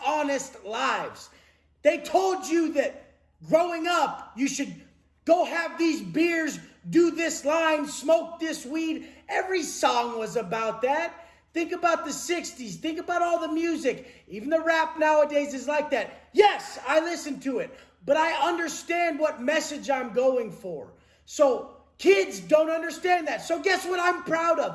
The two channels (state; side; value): identical; both; correlation 1.00